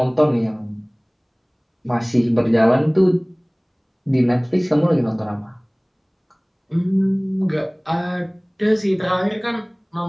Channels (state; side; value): identical; both; correlation 1.00